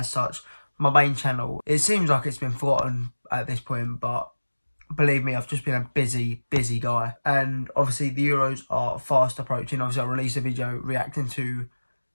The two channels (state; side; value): inverted; both; correlation -1.00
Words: such. My main channel, it seems like it's been forgotten at this point, but believe me, I've just been a busy guy. And obviously the Euros are fast approaching. Obviously I released a video reacting to